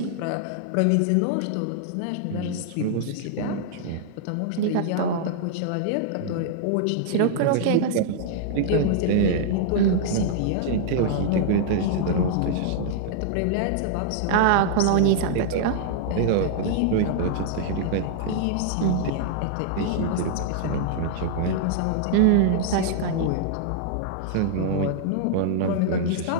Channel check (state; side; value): different; both; correlation -0.01